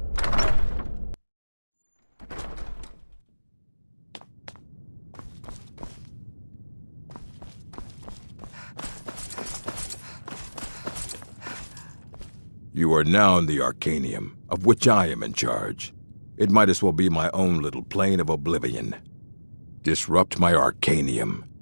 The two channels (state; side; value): inverted; both; correlation -1.00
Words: You are now in the Arcanium, of which I am in charge. It might as well be my own little plane of oblivion. Disrupt my Arcanium,